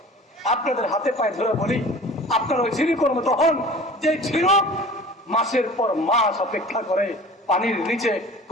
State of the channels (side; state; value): both; normal; correlation 0.43